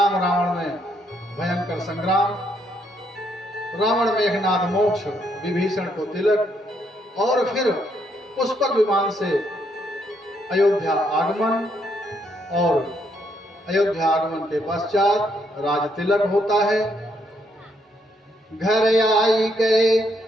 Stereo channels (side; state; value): both; normal; correlation 0.74